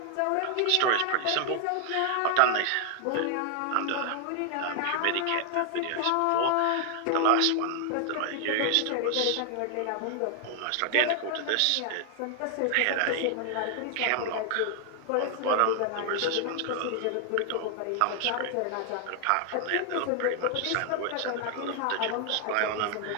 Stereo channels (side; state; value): both; different; correlation 0.00